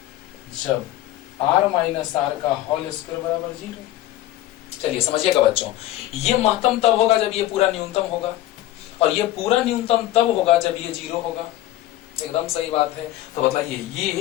r माइनस आर का होल स्क्वायर बराबर 0। चलिए समझिएगा बच्चों, ये महत्तम तब होगा जब ये पूरा न्यूनतम होगा, और ये पूरा न्यूनतम तब होगा जब ये 0 होगा। एकदम सही बात है। तो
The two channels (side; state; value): right; quieter; 14.7 dB